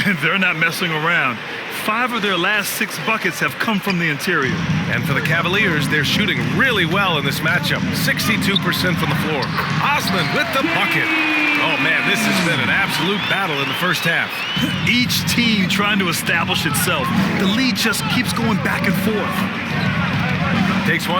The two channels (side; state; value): both; identical; correlation 1.00